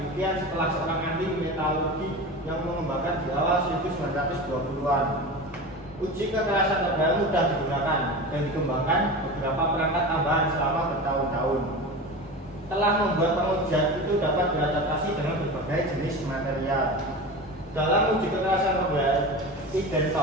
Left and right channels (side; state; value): both; normal; correlation 0.29